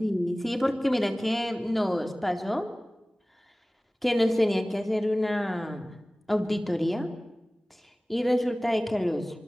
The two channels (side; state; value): both; normal; correlation 0.98